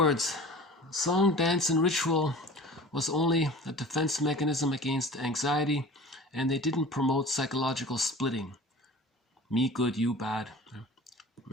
song, dance, and ritual was only a defense mechanism against anxiety, and they didn't promote psychological splitting. Me good, you bad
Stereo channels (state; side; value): normal; both; correlation 0.40